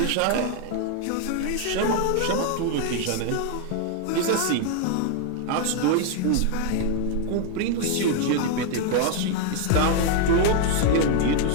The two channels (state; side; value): different; both; correlation 0.00